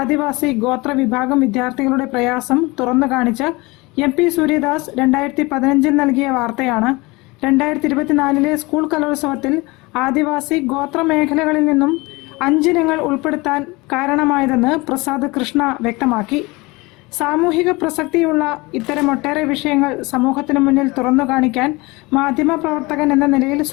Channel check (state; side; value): quieter; right; 23.9 dB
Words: ഗോത്ര വിഭാഗം വിദ്യാർത്ഥികളുടെ പ്രയാസം തുറന്നു കാണിച്ച് MP സൂര്യദാസ് 2015 നൽകിയ വാർത്തയാണ് 2024 സ്കൂൾ കലോത്സവത്തിൽ ആദിവാസി ഗോത്ര മേഖലകളിൽ നിന്നും 5 ഇനങ്ങൾ ഉൾപ്പെടുത്താൻ കാരണമായതെന്ന് പ്രസാദ് കൃഷ്ണ വ്യക്തമാക്കി. സാമൂഹിക പ്രസക്തിയുള്ള ഇത്തരം ഒട്ടേറെ വിഷയങ്ങൾ സമൂഹത്തിന് മുന്നിൽ തുറന്നു കാണിക്കാൻ മാധ്യമപ്രവർത്തകൻ എന്ന നിലയിൽ